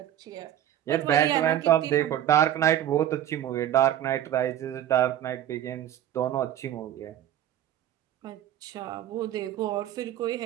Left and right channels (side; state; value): left; quieter; 11.6 dB